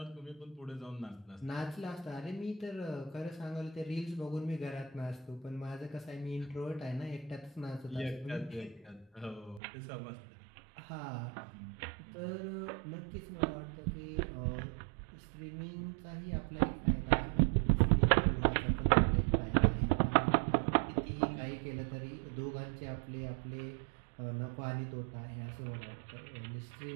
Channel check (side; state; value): left; drops out; at 9.6 s